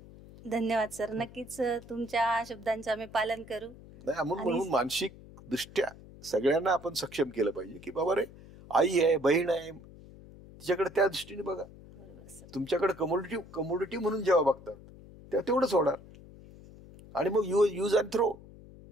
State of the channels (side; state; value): left; noise; hum, 19 dB below the sound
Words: धन्यवाद सर. नक्कीच तुमच्या शब्दांचं आम्ही पालन करू. नाही म्हणून मानसिक दृष्ट्या सगळ्यांना आपण सक्षम केलं पाहिजे की बाबा रे, आई आहे, बहीण आहे, तिच्याकडे त्या दृष्टीने बघा. तुमच्याकडे कमोडिटी म्हणून जेव्हा बघतात तेव्हा तेवढंच होणार. आणि मग यूज अँड थ्रो,